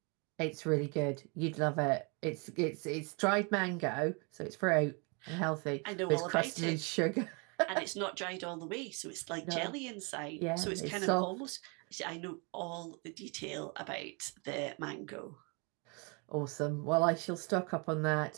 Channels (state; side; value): quieter; left; 32.7 dB